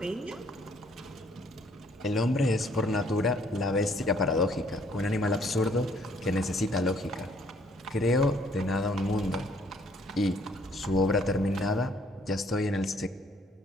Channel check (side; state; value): both; normal; correlation 0.64